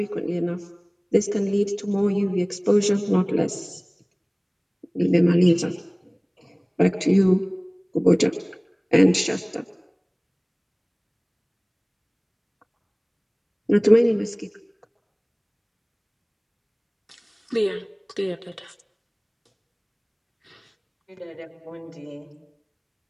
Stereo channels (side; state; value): both; identical; correlation 1.00